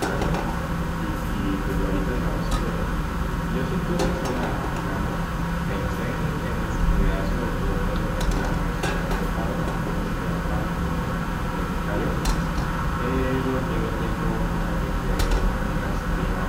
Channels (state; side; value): identical; both; correlation 1.00